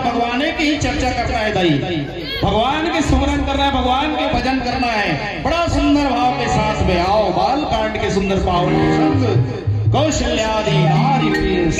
भगवान की ही चर्चा करना है दाई, भगवान के सुमरन करना है, भगवान के भजन करना है बड़ा सुंदर भाव के साथ में। आओ बाल कांड के सुंदर पावन कौशल्यादि नारी प्रिय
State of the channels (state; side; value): identical; both; correlation 1.00